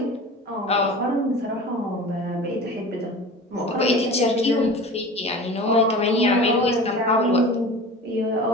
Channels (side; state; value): both; normal; correlation 0.36